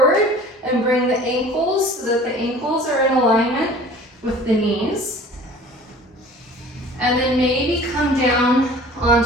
and bring the ankles so that the ankles are in alignment with the knees. And then maybe come down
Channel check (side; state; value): both; normal; correlation 0.45